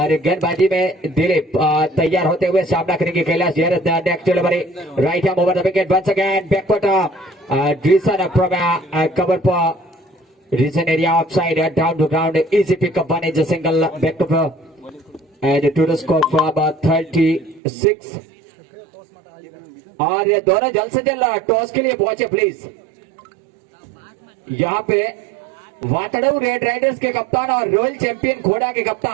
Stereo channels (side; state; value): left; drops out; at 17.6 s